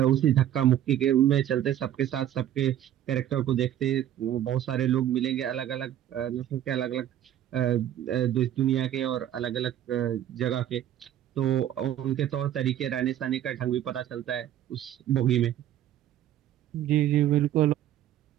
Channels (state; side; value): quieter; left; 11.5 dB